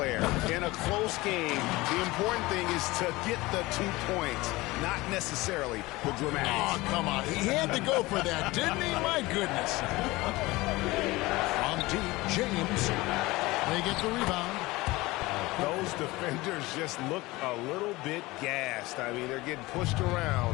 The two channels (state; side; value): quieter; right; 20.7 dB